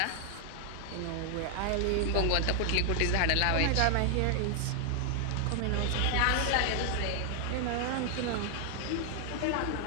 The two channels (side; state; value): both; different; correlation 0.00